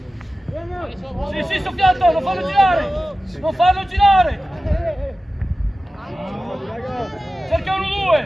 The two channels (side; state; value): both; normal; correlation 0.95